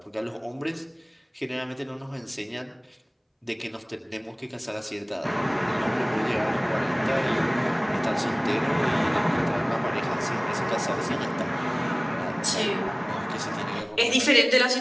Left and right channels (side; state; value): both; identical; correlation 1.00